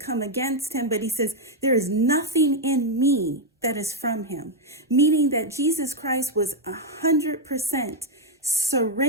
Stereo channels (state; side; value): normal; both; correlation 0.01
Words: against him, but he says, there is nothing in me that is from him. Meaning that Jesus Christ was 100%